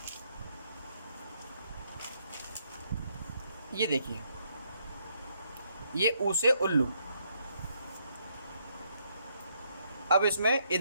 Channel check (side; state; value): both; inverted; correlation -0.74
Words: ये देखिए, ये ऊ से उल्लू। अब इसमें ये